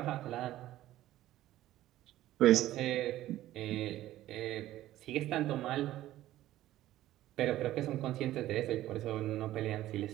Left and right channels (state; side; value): quieter; left; 14.4 dB